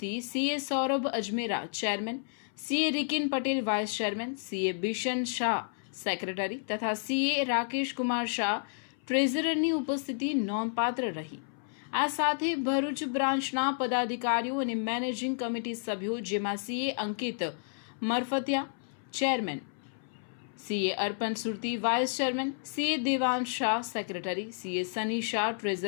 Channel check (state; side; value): silent; right; 57 dB below the other